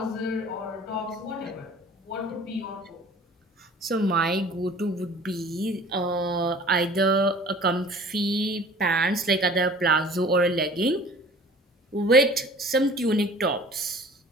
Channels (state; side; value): normal; both; correlation 0.47